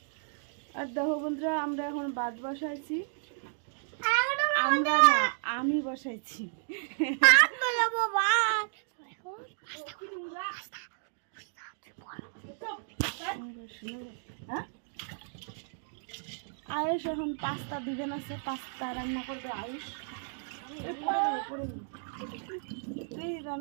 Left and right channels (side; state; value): left; silent; digital silence